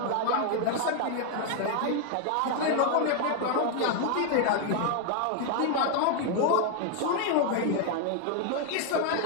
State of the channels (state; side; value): different; both; correlation 0.00